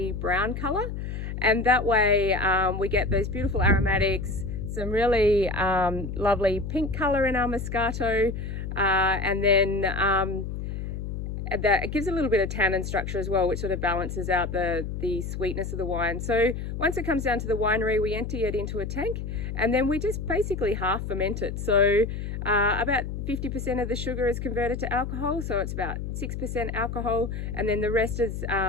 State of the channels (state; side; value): noise; left; hum, 5 dB below the sound